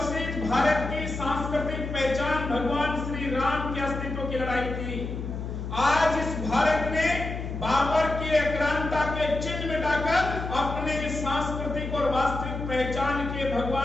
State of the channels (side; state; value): left; noise; hum, 6 dB below the sound